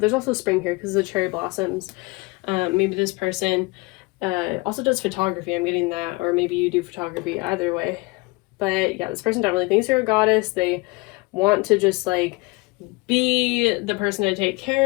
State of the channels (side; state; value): right; quieter; 25.8 dB